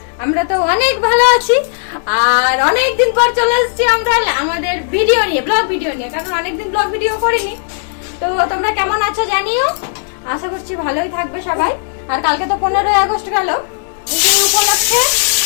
আমরা তো অনেক ভালো আছি। আর অনেকদিন পর চলে এসেছি আমরা আমাদের ভিডিও নিয়ে, ব্লগ ভিডিও নিয়ে, কারণ অনেকদিন ব্লগ ভিডিও করিনি। তো তোমরা কেমন আছো জানিও, আশা করছি ভালোই থাকবে সবাই। আর কালকে তো 15ই আগস্ট গেল, সেই উপলক্ষে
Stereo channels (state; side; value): silent; right; digital silence